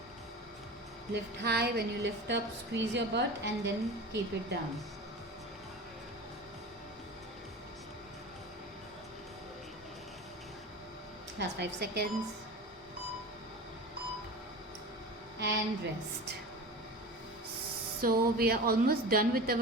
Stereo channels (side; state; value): both; normal; correlation 0.32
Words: Lift high. When you lift up, squeeze your butt and then keep it down. Last 5 seconds. And rest. So we are almost done with